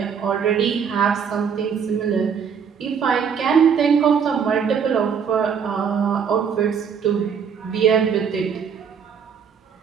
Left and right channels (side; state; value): left; quieter; 6.9 dB